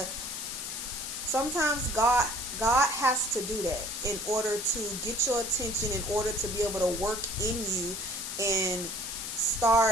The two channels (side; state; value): left; noise; hiss, 6 dB below the sound